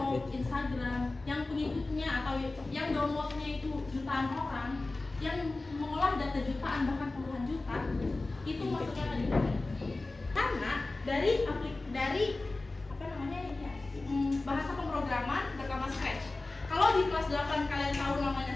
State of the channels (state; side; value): quieter; right; 3.2 dB